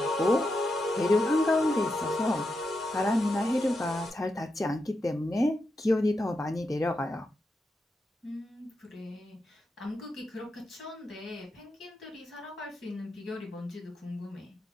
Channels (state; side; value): normal; both; correlation 0.86